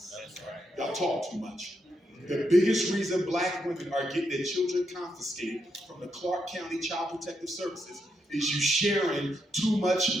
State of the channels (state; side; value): normal; both; correlation 0.81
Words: That's right. Y'all talk too much. The biggest reason black women are getting their children confiscated from the Clark County Child Protective Services is you sharing too